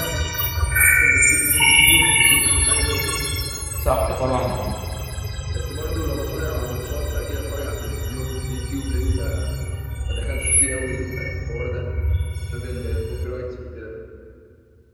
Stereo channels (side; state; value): both; identical; correlation 1.00